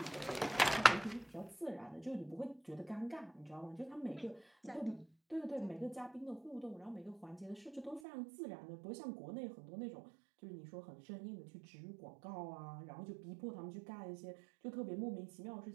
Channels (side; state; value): left; drops out; at 8.0 s